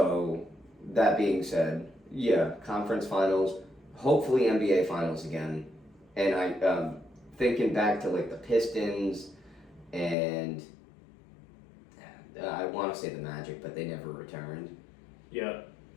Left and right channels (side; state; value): right; drops out; at 10.2 s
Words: that being said, yeah, conference finals, hopefully NBA finals again. And I, thinking back to like the Pistons and I want to say the Magic, but they never returned. Yeah.